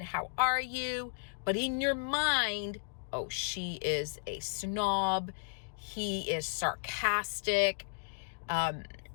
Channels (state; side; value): silent; right; digital silence